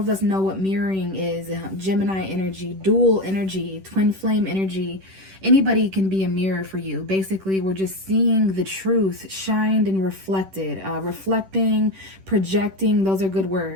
us know what mirroring is. Gemini energy, dual energy, twin flame energy. Anybody can be a mirror for you. Basically, we're just seeing the truth shined and reflected. Reflecting, projecting, those are good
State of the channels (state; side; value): late; left; 10 ms